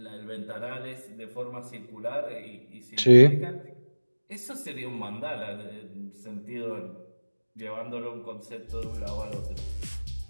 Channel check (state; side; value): inverted; both; correlation -1.00